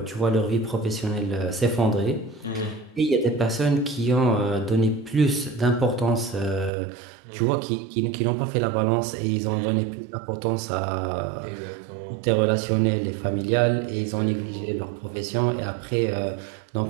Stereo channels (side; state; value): left; drops out; at 6.7 s